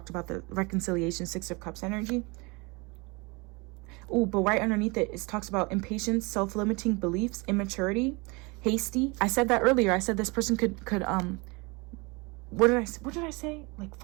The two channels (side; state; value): left; quieter; 27.3 dB